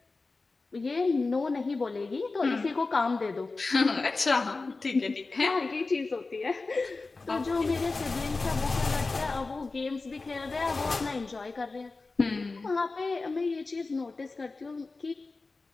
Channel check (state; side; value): quieter; right; 3.7 dB